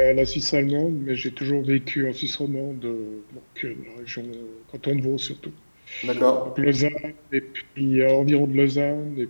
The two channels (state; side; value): inverted; both; correlation -1.00